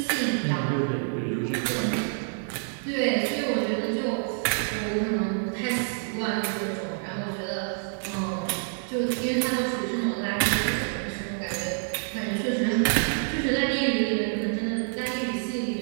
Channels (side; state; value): left; silent; digital silence